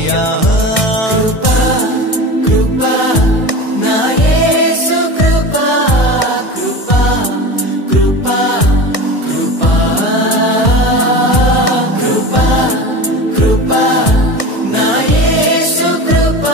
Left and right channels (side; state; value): right; late; 1.6 ms